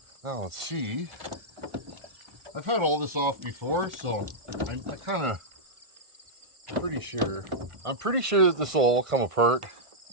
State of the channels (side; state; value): left; late; 1.5 ms